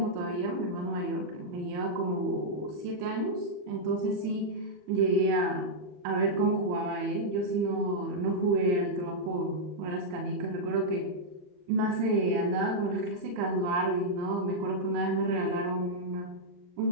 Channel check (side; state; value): left; late; 40 ms